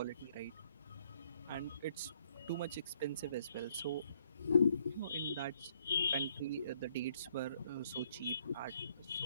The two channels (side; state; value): both; inverted; correlation -0.69